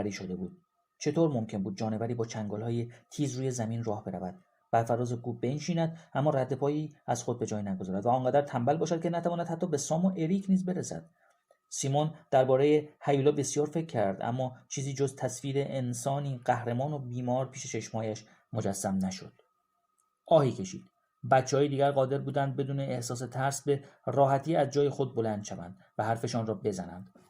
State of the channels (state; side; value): identical; both; correlation 1.00